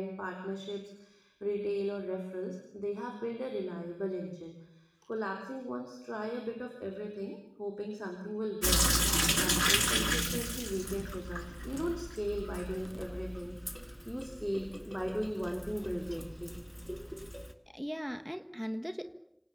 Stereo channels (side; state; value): both; identical; correlation 1.00